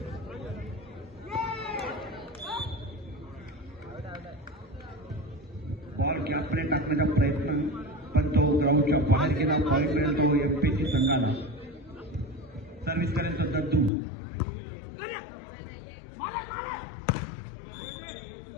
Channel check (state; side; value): drops out; right; at 13.9 s